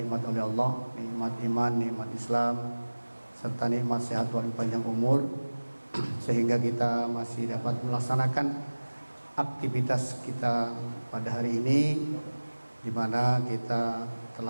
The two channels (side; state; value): both; inverted; correlation -1.00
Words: oleh Allah, nikmat iman, nikmat Islam, serta nikmat sehat dan panjang umur, sehingga kita masih dapat melaksanakan aktivitas kita pada hari ini, di mana kita